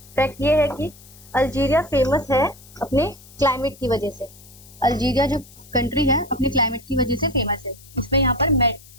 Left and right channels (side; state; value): left; noise; hiss, 22 dB below the sound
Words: फैक्ट ये है कि अल्जीरिया फेमस है अपने क्लाइमेट की वजह से। अल्जीरिया जो कंट्री है अपने क्लाइमेट की वजह से फेमस है। इसमें यहाँ पर